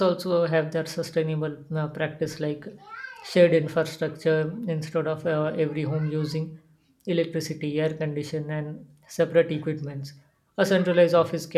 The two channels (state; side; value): identical; both; correlation 1.00